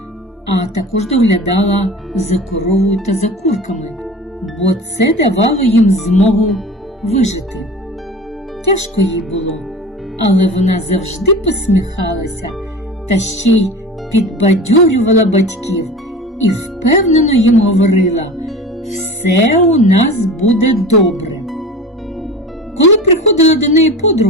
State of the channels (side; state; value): both; normal; correlation 0.35